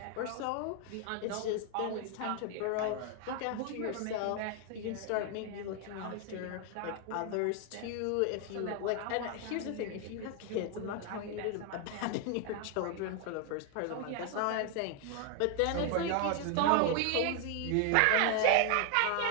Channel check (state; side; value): different; both; correlation 0.01